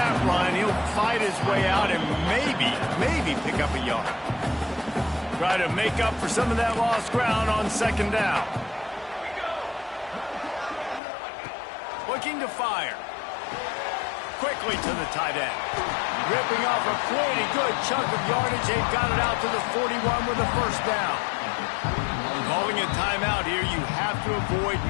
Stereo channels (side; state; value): right; drops out; at 11.0 s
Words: run. He'll fight his way out and maybe pick up a yard. Try to make up for some of that lost ground on 2nd down. Looking to fire. Quickly to the tight end. Ripping off a pretty good chunk of yardage. They've got it out to the 41 with a 1st down. Calling a timeout here. You have to avoid